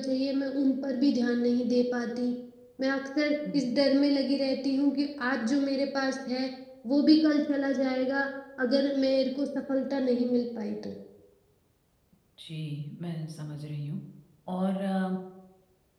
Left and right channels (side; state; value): both; identical; correlation 1.00